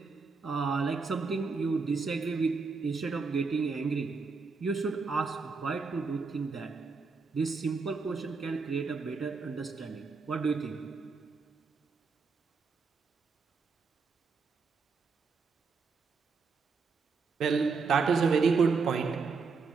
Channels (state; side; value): quieter; left; 4.7 dB